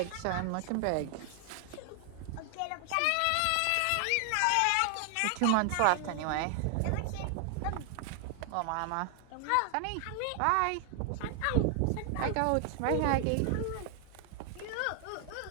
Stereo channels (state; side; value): different; both; correlation 0.00